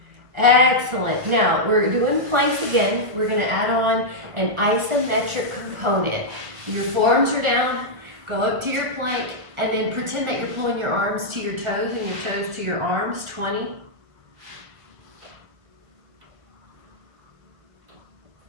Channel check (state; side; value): late; left; 2.0 ms